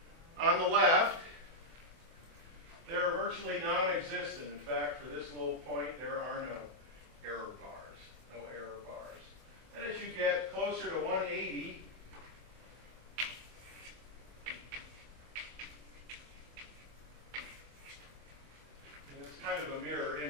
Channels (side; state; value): left; late; 24 ms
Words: On the left, they're virtually non-existent. In fact, for this little point, there are no error bars. No error bars. And as you get closer to 180, in this kind of a mirror